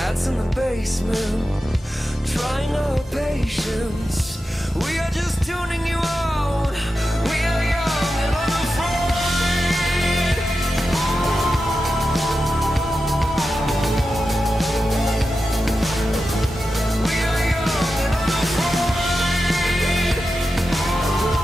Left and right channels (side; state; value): both; normal; correlation 0.91